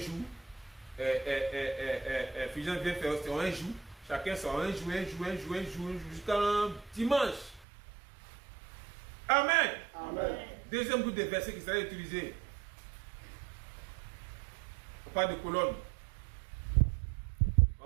Fusion vient faire son un jour. Chacun son un jour, jusqu'à dimanche. Amen. Amen. Deuxième groupe de versets qui sera utilisé. On parle de colonne. On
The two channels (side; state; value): left; drops out; at 7.7 s